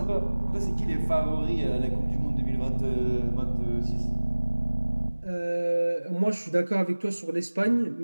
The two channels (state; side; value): inverted; both; correlation -1.00